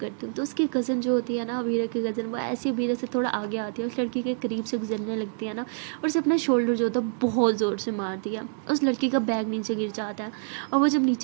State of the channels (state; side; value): silent; left; digital silence